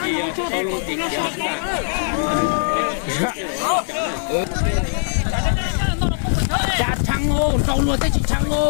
Con luôn tiền Chả thằng ngô, trâu luôn tới chỉ thằng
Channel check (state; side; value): silent; right; digital silence